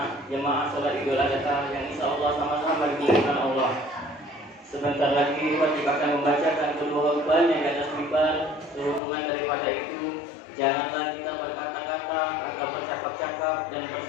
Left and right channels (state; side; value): drops out; right; at 9.0 s